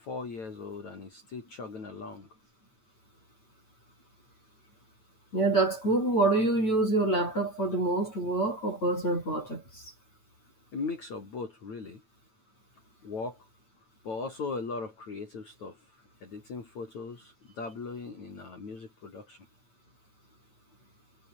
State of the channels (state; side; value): late; right; 9.2 ms